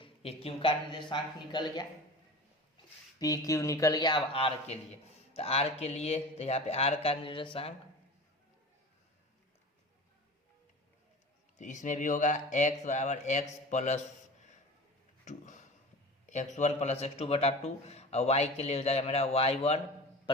q का निर्देशांक निकल गया, पी क्यू निकल गया। अब r के लिए, तो r के लिए तो यहाँ पे r का निर्देशांक, तो इसमें भी होगा x बराबर x + 2, x1 + x2/2, और y के लिए हो जाएगा मेरा y1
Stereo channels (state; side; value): normal; both; correlation 0.35